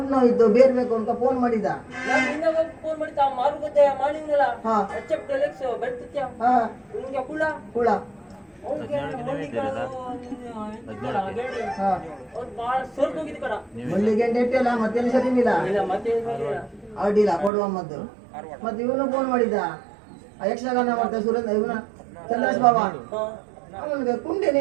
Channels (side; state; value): left; drops out; at 17.5 s